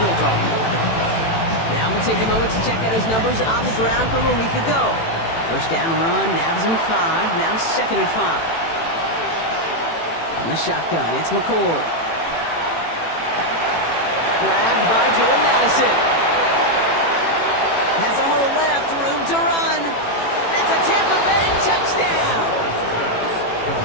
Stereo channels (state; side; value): late; right; 18 ms